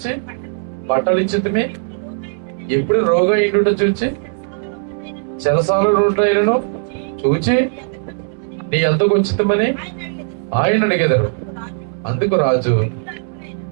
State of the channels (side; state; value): left; silent; digital silence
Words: బట్టలు ఇచ్చేదమే, ఎప్పుడు రోగైనడు చూసి చెరసాలను చూచి నీ ఎందుకు వచ్చితమని ఆయన అడిగేదారు. అందుకు రాజు,